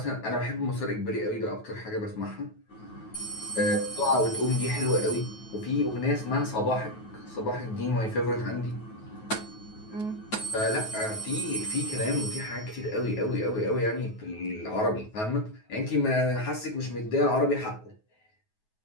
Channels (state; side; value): late; right; 9.3 ms